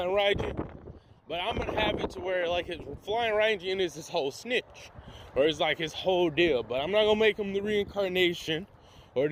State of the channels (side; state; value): both; identical; correlation 1.00